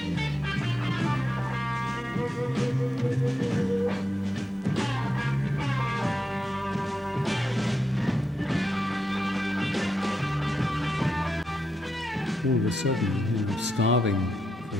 All of a sudden, starving for a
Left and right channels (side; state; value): both; normal; correlation 0.85